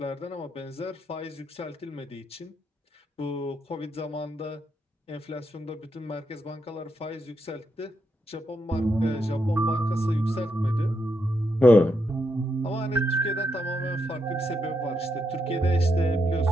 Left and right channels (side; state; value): both; normal; correlation 0.81